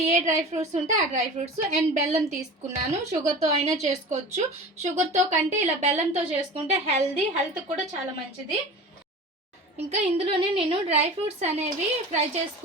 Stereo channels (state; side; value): normal; both; correlation 0.35